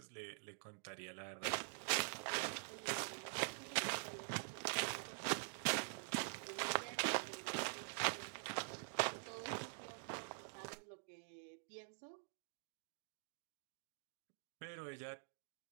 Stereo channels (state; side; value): silent; left; digital silence